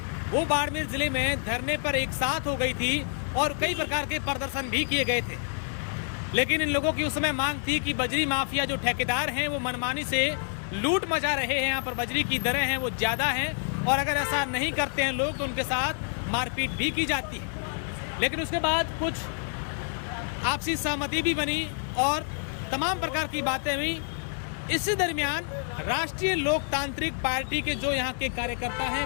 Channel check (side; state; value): right; silent; 59 dB below the other